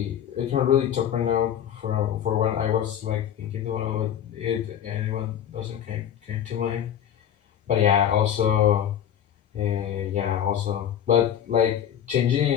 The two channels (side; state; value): right; quieter; 9.8 dB